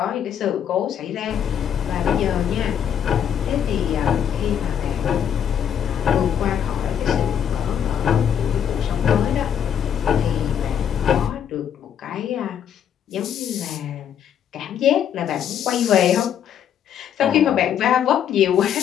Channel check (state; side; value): quieter; right; 8.9 dB